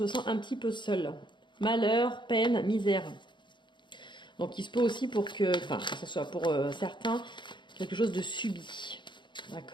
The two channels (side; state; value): right; late; 0.23 ms